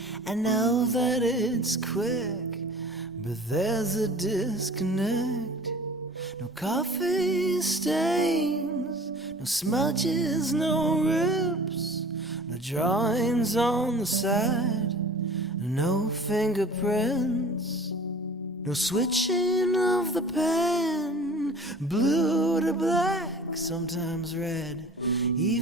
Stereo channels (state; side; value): normal; both; correlation 0.44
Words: I know that it's quick, but there's a disconnect. No coffee stains, no smudges, no rips, no drawings on the side, no fingerprints, no switching of the pen, blue to black, sometimes red,